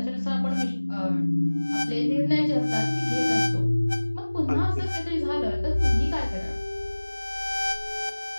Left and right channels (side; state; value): both; inverted; correlation -1.00